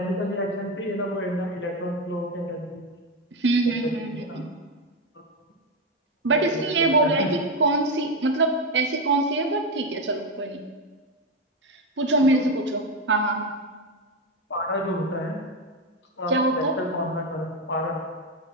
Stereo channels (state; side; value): normal; both; correlation 0.11